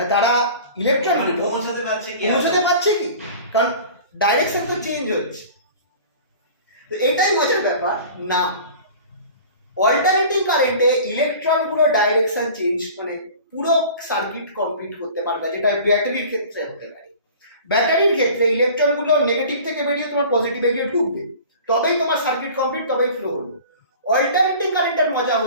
তারা ইলেকট্রনগুলো পৌঁছাতে পারছে কি, কারণ ডাইরেকশন তো চেঞ্জ হচ্ছে। তো এটাই মজার ব্যাপার না, অল্টারনেটিং কারেন্টে ইলেকট্রনগুলো ডাইরেকশন চেঞ্জ মানে পুরো সার্কিট কমপ্লিট করতে পারবে, যেটা ব্যাটারির ক্ষেত্রে হতে পারে। ব্যাটারির ক্ষেত্রে ইলেকট্রনগুলো নেগেটিভ থেকে বেরিয়ে তোমার পজিটিভে গিয়ে ঢুকবে, তবেই তোমার সার্কিট কমপ্লিট, তবেই ফ্লো হলো। অল্টারনেটিং কারেন্টের মজা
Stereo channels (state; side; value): inverted; both; correlation -0.42